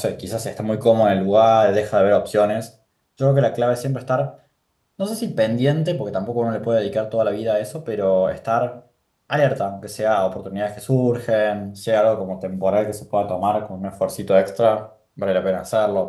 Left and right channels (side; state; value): both; identical; correlation 1.00